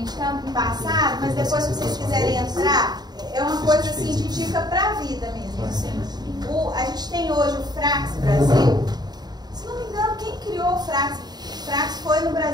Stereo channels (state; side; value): late; left; 0.20 ms